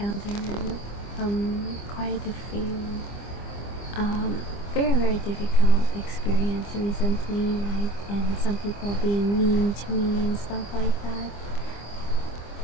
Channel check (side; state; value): right; late; 25 ms